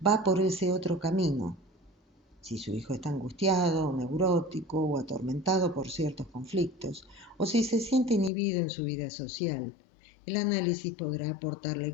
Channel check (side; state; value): right; drops out; at 8.3 s